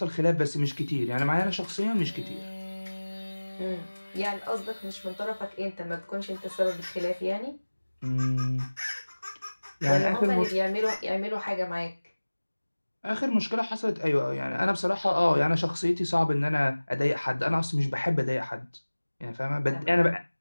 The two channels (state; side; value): inverted; both; correlation -1.00